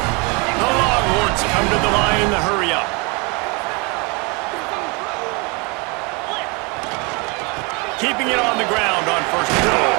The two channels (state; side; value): quieter; left; 30.1 dB